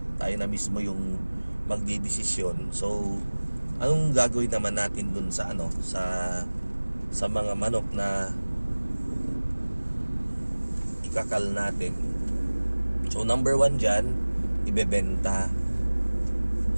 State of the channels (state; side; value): inverted; both; correlation -1.00